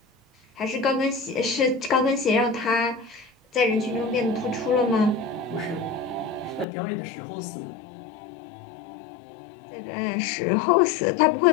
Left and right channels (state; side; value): drops out; right; at 6.7 s